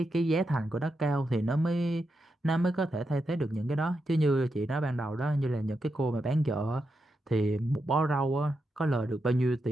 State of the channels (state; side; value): normal; both; correlation 0.86